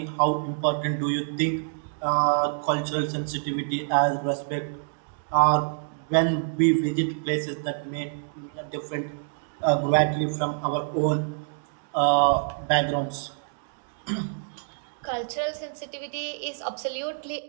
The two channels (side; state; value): left; silent; digital silence